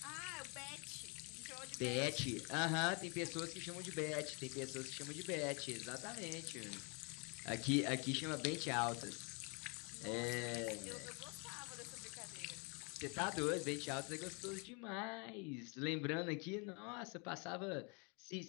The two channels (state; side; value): quieter; right; 33.7 dB